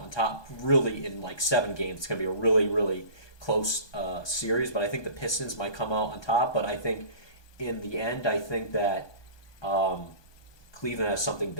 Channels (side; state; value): right; late; 1.2 ms